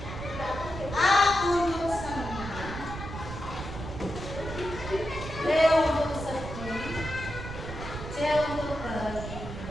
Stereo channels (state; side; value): noise; right; rumble, 9 dB below the sound